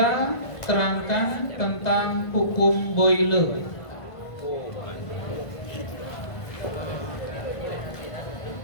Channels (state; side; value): late; right; 1.5 ms